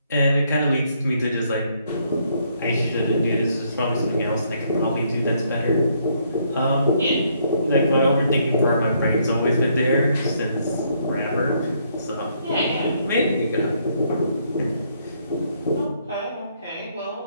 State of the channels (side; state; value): both; inverted; correlation -0.70